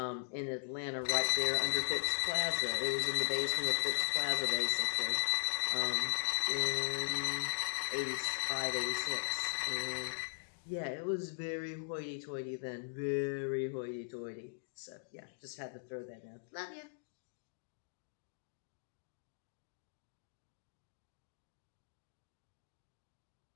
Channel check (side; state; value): right; silent; digital silence